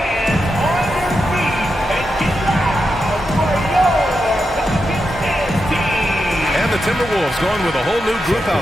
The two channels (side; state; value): right; noise; hum, 21 dB below the sound